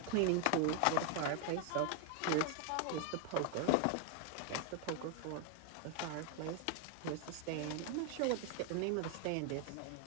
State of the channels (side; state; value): both; different; correlation 0.01